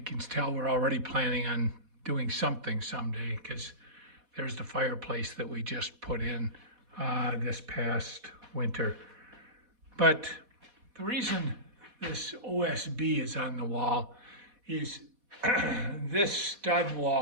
tell we're already planning on doing something someday, because there's the fireplace that we just put in this past winter. But the reason this OSB is on the wall is this stud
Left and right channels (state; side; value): late; left; 4.1 ms